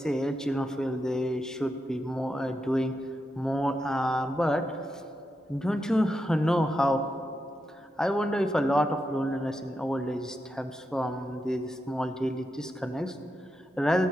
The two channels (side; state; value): both; normal; correlation 0.86